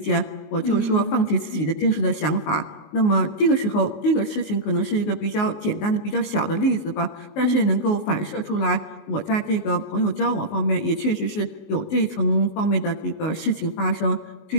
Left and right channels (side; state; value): right; late; 19 ms